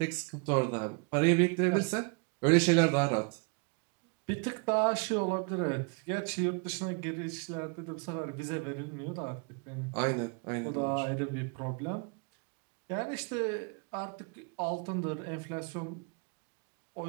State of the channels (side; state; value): left; quieter; 33.6 dB